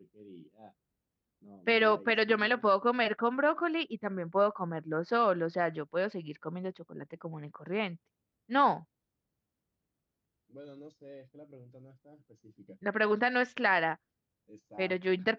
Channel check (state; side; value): identical; both; correlation 1.00